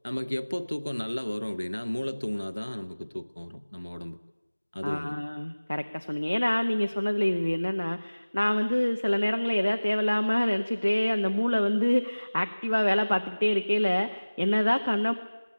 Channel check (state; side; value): inverted; both; correlation -1.00